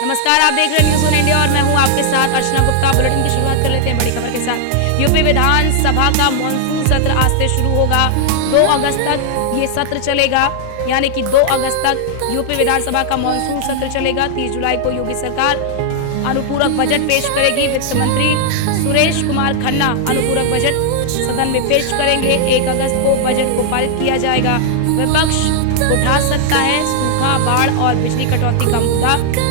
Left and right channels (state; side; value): different; both; correlation 0.00